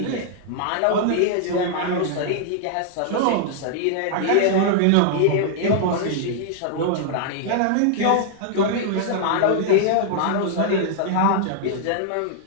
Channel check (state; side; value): different; both; correlation -0.01